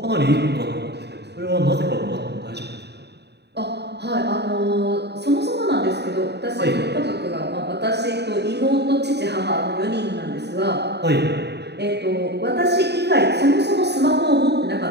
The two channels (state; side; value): late; left; 0.49 ms